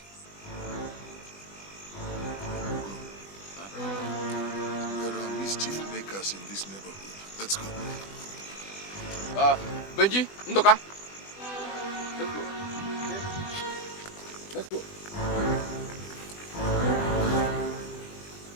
Ugo. There are mischief makers in this neighborhood. Let's go. Benji, Ndoka. Let's go. Okay. Let's go.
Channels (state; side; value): late; right; 20 ms